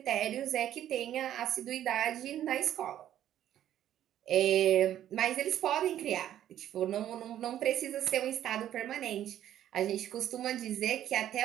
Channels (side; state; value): left; quieter; 11.5 dB